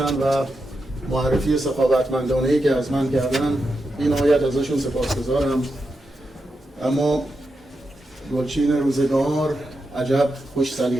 و معرفی سخاوتمندانه‌ای که از من کردن. بی نهایت ازشون سپاسگزارم. اما گلچین روزگار عجب خوش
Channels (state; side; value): normal; both; correlation 0.87